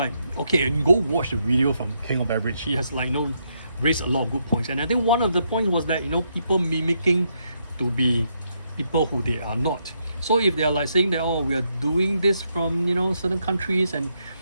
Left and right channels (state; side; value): inverted; both; correlation -0.78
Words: okay, and go watch the video from King of Average. He has raised a lot of good points, and I think one of the points was that people mimicking to be people who they are not. So if they are like saying that, oh, we are doing this from certain countries, and